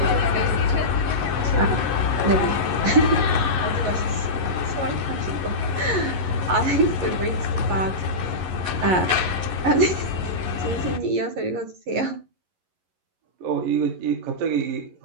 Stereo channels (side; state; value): left; late; 11 ms